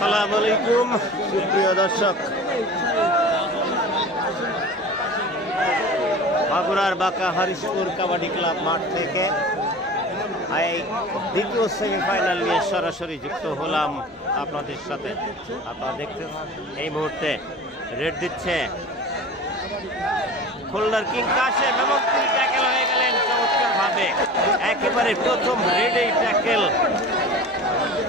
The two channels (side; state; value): both; normal; correlation 0.38